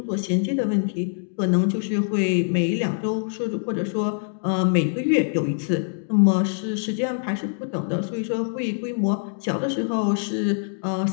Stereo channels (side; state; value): right; silent; digital silence